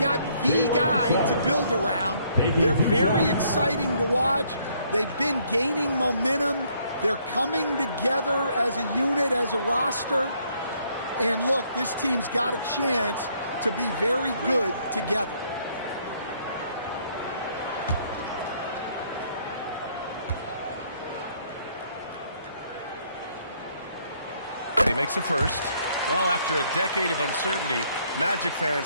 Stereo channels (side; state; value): both; inverted; correlation -0.67